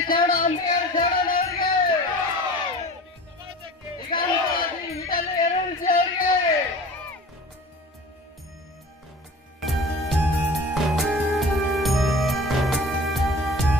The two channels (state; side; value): normal; both; correlation 0.40